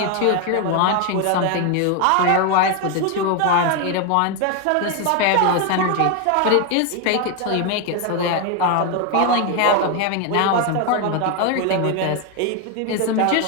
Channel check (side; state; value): both; different; correlation 0.01